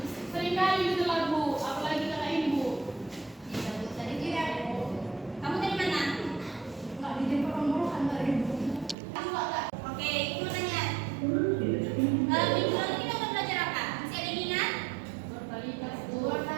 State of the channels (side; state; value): left; drops out; at 9.0 s